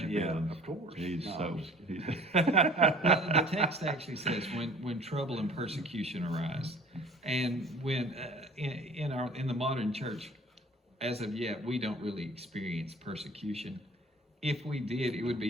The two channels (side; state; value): both; normal; correlation 0.48